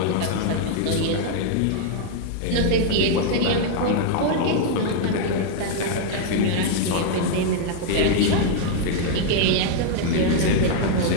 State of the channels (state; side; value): different; both; correlation 0.00